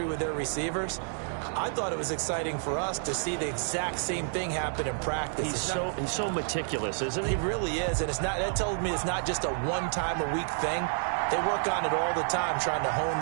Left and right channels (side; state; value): left; silent; 58 dB below the other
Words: with their receivers. I thought it was exciting for us to see the exact same thing happen in practice. He's so meticulous, isn't he? He really is, and that tells me it's not just a one-time-a-week thing. They work on it all the time, trying to hone